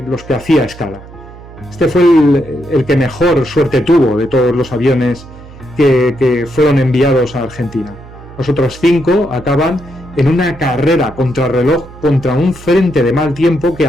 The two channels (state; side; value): noise; right; hum, 18 dB below the sound